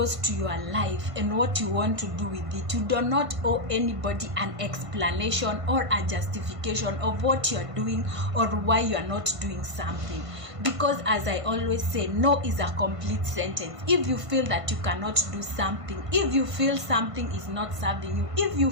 to your life and what you want to do with it, you do not owe anybody an explanation or a justification of what you're doing or why you're not doing something. Because as I always say, no is a complete sentence. If you feel that you cannot do something, if you feel something is not serving you, if you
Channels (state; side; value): late; left; 1.5 ms